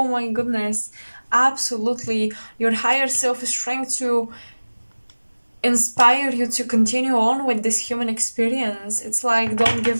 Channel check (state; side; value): inverted; both; correlation -1.00